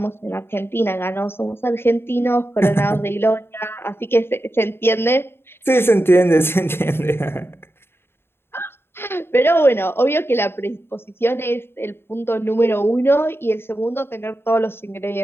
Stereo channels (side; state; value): right; late; 0.11 ms